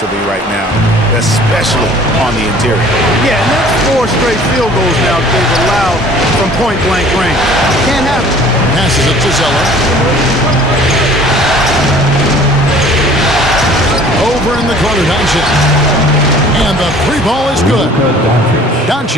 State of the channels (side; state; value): both; normal; correlation 0.50